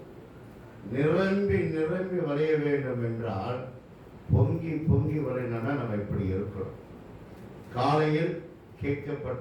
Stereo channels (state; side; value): identical; both; correlation 1.00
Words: நிரம்பி நிரம்பி வளைய வேண்டும் என்றால் பொங்கி பொங்கி வளையணும்னா நம்ம இப்படி இருக்கணும். காலையில்